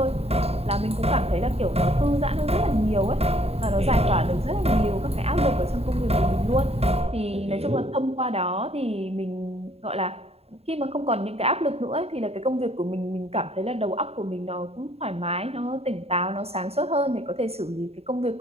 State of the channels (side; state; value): left; late; 0.29 ms